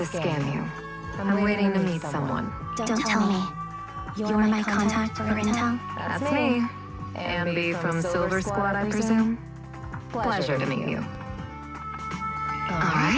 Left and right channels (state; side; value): identical; both; correlation 1.00